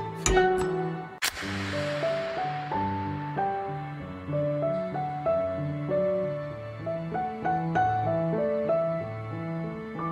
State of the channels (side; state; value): both; identical; correlation 1.00